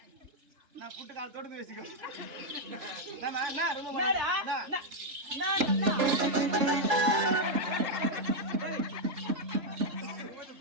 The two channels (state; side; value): late; left; 3.3 ms